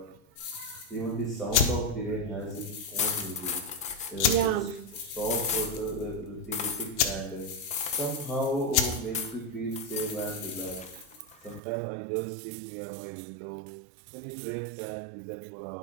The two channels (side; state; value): left; drops out; at 11.6 s